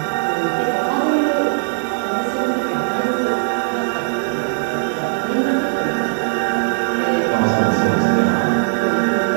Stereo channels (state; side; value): silent; left; digital silence